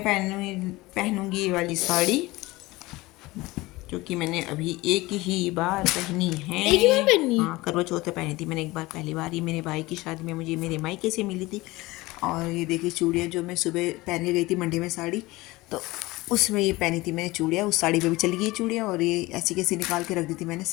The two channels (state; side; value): quieter; right; 20.5 dB